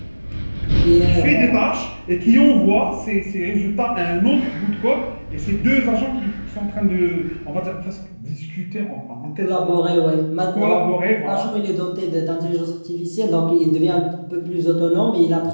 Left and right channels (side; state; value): both; inverted; correlation -1.00